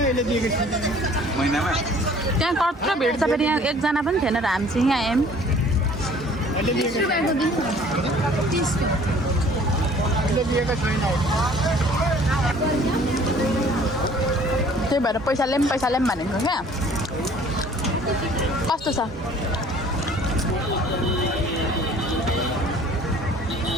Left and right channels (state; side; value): normal; both; correlation 0.53